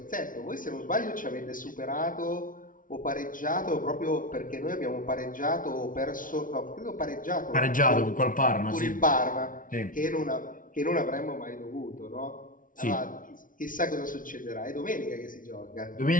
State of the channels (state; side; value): late; right; 0.39 ms